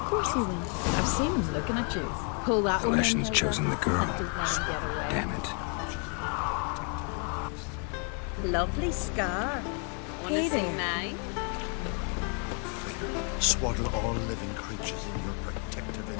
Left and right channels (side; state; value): right; quieter; 39.9 dB